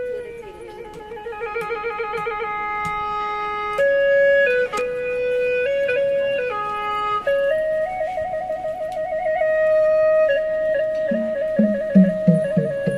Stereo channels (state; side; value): identical; both; correlation 1.00